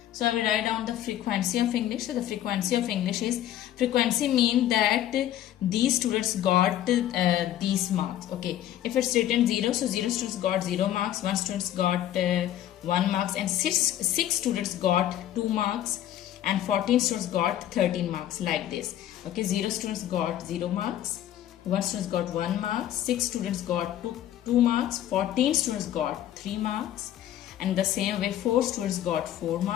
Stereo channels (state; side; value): quieter; right; 12.1 dB